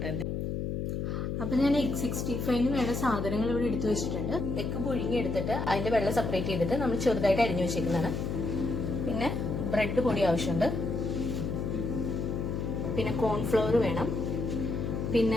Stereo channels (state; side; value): noise; left; hum, 2 dB below the sound